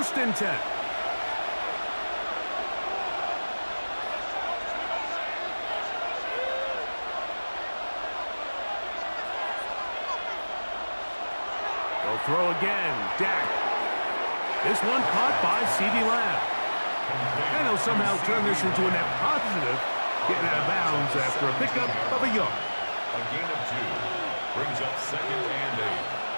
and 10. They'll throw again. Dak. This one caught by CeeDee Lamb. And he'll somehow turn this into a net positive, getting out of bounds after a pickup of a yard. A gain of 2 brings up 2nd and 8.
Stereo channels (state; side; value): inverted; both; correlation -1.00